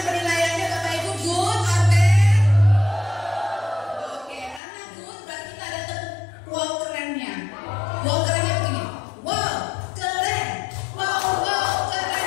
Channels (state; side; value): drops out; right; at 4.6 s